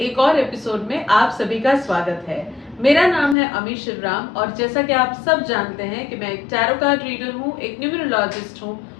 एक और एपिसोड में आप सभी का स्वागत है। मेरा नाम है अमी शिवराम और जैसा कि आप सब जानते हैं कि मैं एक टैरो कार्ड रीडर हूँ, एक न्यूमरोलॉजिस्ट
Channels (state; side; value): drops out; right; at 3.4 s